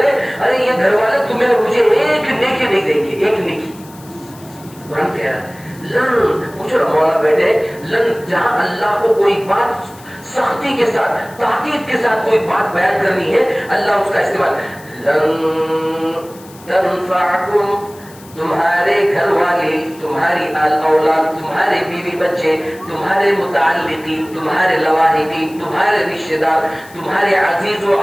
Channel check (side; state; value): left; noise; hiss, 23 dB below the sound